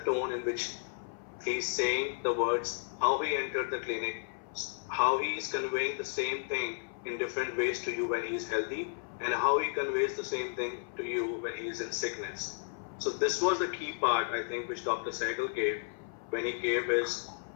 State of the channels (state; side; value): silent; right; 56 dB below the other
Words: in which he's saying the words, how he entered the clinic, how he is conveying the same thing in different ways to you when he is healthy, and how he conveys the same thing to you when he is in sickness. So this was the key part, I think, which Dr. Sehgal gave when he gave us